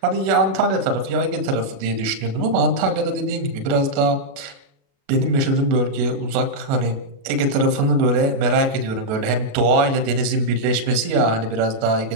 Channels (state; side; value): late; left; 37 ms